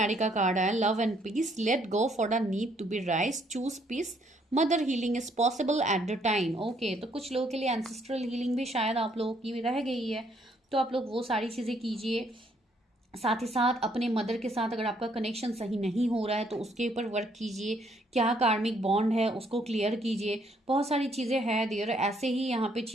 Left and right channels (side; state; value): both; normal; correlation 0.68